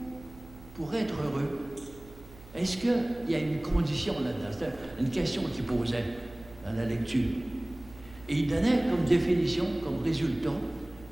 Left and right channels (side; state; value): right; noise; hum, 20 dB below the sound